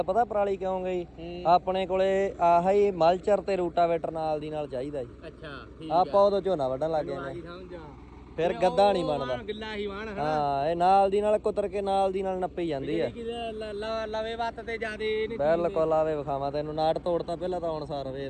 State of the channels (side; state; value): both; identical; correlation 1.00